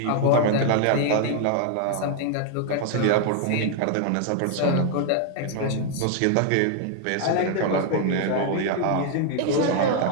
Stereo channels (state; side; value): different; both; correlation 0.00